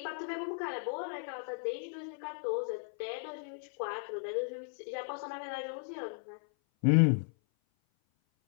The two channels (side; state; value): right; silent; 54 dB below the other